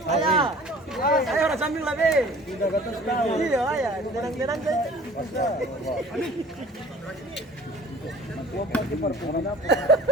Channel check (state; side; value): normal; both; correlation 0.47